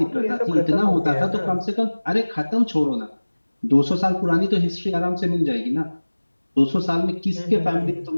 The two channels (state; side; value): inverted; both; correlation -1.00